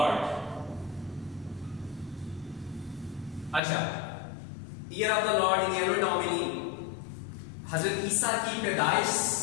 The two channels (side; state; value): right; drops out; at 3.6 s